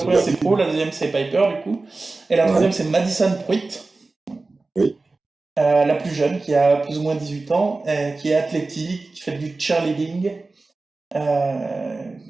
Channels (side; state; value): left; quieter; 3.5 dB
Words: Pro, la deuxième, c'est Piper, du coup. Et la troisième, c'est Madison Pruitt. Oui. La plus jeune, qui a plus ou moins 18 ans, qui est athlétique, qui fait du cheerleading.